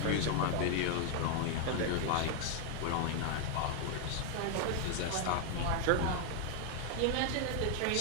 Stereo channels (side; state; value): both; different; correlation 0.00